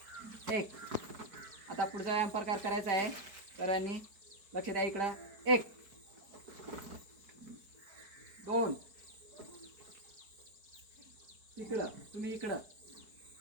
1. आता पुढचा व्यायाम प्रकार करायचा आहे. सरांनी लक्ष द्या इकडं. 1 2 इकडं, तुम्ही इकडं.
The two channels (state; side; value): late; left; 4.6 ms